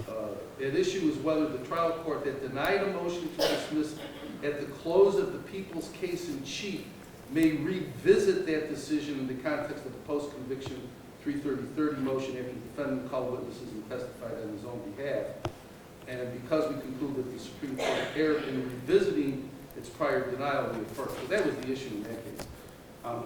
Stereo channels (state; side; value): identical; both; correlation 1.00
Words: at issue is whether the trial court that denied a motion to dismiss at the close of the People's case in chief may revisit that decision in the context of the post-conviction 330.30 motion after the defendant called witnesses and testified on his own behalf. And because we conclude that the Supreme Court erred in revisiting its prior denial, we affirm. So that was the issue in that case.